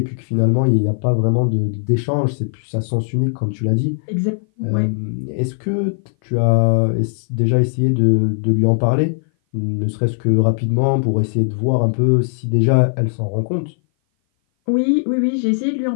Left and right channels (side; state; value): right; silent; 58 dB below the other